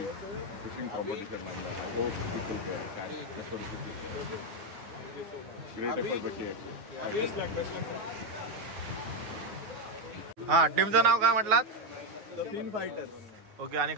Fishing competition and I hope people there catch. That's what it is. Great effort by KXA. हा, टीमचं नाव काय म्हटलात? The fin fighters. ओके, आणि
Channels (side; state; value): left; late; 9.5 ms